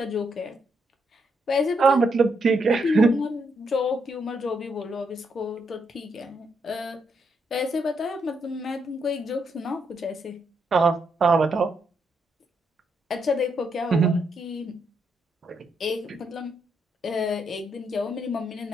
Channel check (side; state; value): both; normal; correlation 0.78